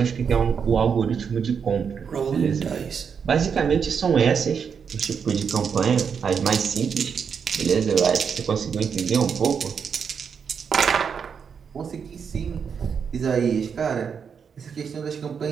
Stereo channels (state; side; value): quieter; left; 6.6 dB